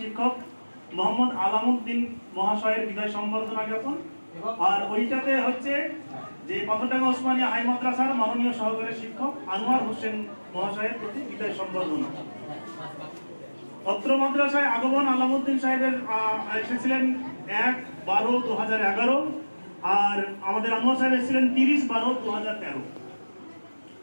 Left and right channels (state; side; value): inverted; both; correlation -1.00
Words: শিক্ষক মোহাম্মদ আলামউদ্দিন মহাশয়ের বিদায় সম্বর্ধনা জ্ঞাপন। আর ওইটাতে হচ্ছে যে পাথরডাঙ্গা ওসমানিয়া হাই মাদ্রাসার মাননীয় সহকারী শিক্ষক আনোয়ার হোসেন মহাশয়ের প্রতি বিদায় সম্বর্ধনা। অত্র মাদ্রাসায় আগমন আলামউদ্দিন সাহেবের এসেছিলেন 1-12-2011, আর আমাদের আনোয়ার সাহেব এসেছিলেন 30-12-2013।